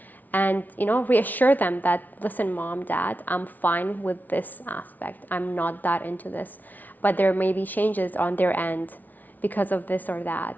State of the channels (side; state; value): right; late; 0.080 ms